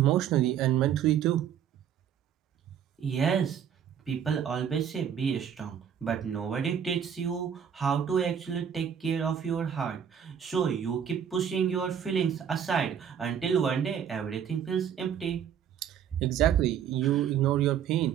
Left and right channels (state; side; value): quieter; left; 8.6 dB